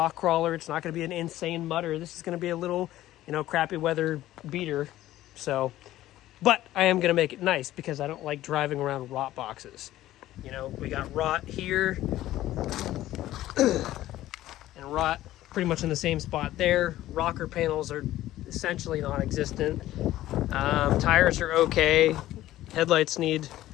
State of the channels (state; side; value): quieter; right; 14.6 dB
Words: crawler. It's not going to be an insane mutter. This is going to be a little, crappy weather beater. So, but I am going to make it nice because I don't like driving around rot boxes. We got rot here and rot pretty much in the same spot there. Rocker panels are essentially non-existent. Tires are okay. Headlights need